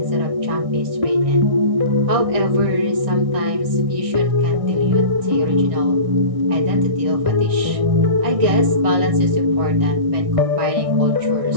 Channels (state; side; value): late; left; 1.6 ms